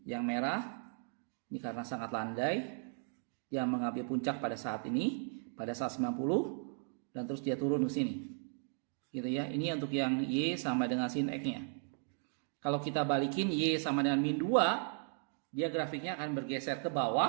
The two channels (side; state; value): left; silent; 54 dB below the other